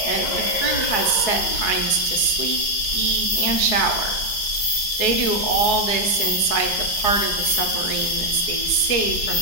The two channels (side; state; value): right; late; 4.7 ms